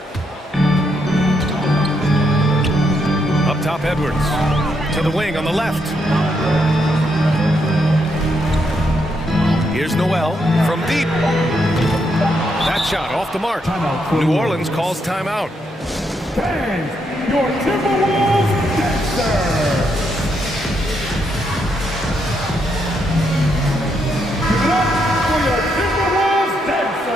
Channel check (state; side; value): normal; both; correlation 0.78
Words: Up top, Edwards. To the wing on the left. Here's Noel from deep. That shot off the mark. New Orleans calls timeout. Bang! Your Timberwolves dancer! Give it up for your Timberwolves